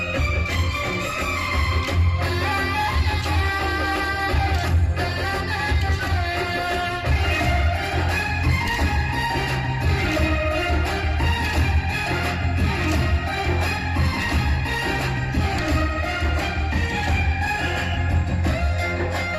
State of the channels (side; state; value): both; identical; correlation 1.00